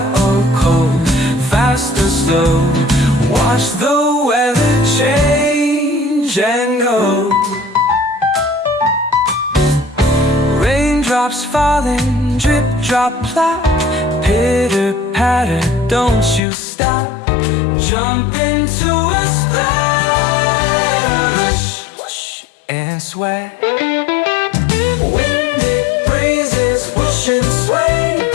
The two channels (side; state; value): right; drops out; at 16.4 s